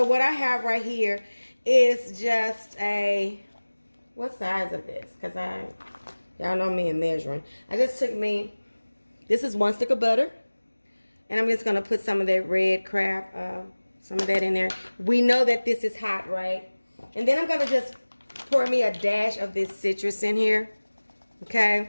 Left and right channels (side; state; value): both; inverted; correlation -1.00